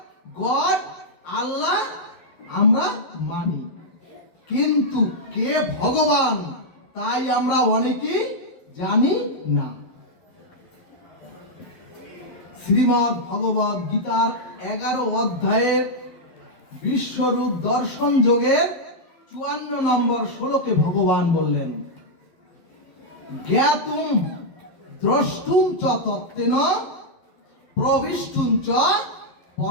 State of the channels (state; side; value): late; right; 11 ms